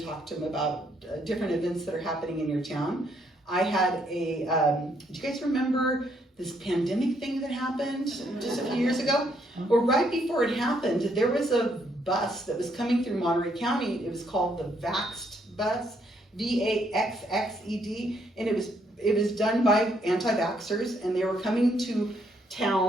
talk to them about different events that are happening in your town. I had do you guys remember this pandemic thing that happened just a few years ago? Well, right before it happened, there was a bus that was coming through Monterey County. It was called the Vaxxed bus, VAXXED, and it was done by anti-vaxxers, and they were coming to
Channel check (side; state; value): both; normal; correlation 0.71